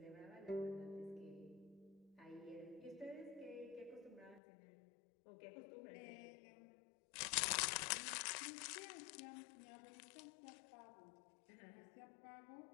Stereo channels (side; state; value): right; drops out; at 4.4 s